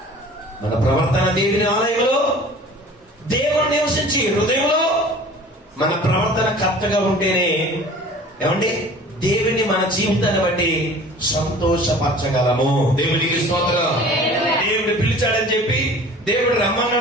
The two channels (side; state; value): both; normal; correlation 0.45